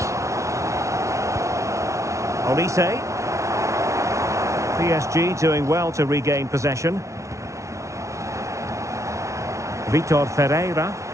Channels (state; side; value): late; left; 0.14 ms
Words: Olise. PSG doing well to regain possession. Vitor Ferreira.